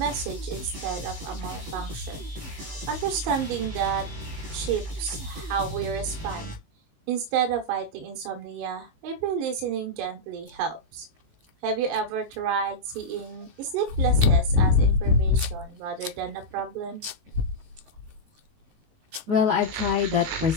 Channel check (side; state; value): left; late; 19 ms